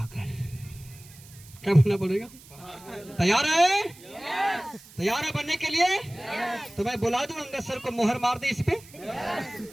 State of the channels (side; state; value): right; noise; hiss, 21 dB below the sound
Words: क्या बनना पड़ेगा? तैयार है? तैयार है बनने के लिए? तो मैं बुला दूं अंगद सर को, मोहर मार दे इस पे।